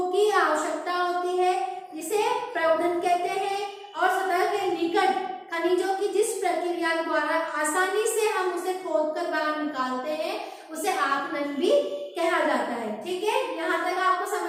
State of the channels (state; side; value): identical; both; correlation 1.00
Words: की आवश्यकता होती है, जिसे प्रवर्धन कहते हैं। और सतह के निकट खनिजों की जिस प्रक्रिया द्वारा आसानी से हम उसे खोदकर बाहर निकालते हैं उसे आखनन भी कहा जाता है। ठीक है, यहाँ तक आपको